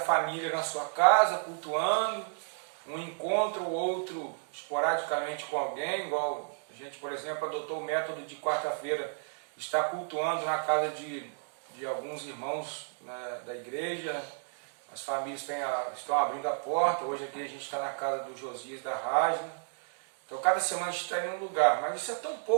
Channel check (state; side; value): silent; left; digital silence